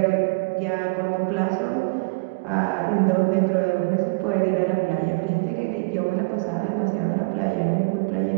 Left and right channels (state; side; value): quieter; left; 30.7 dB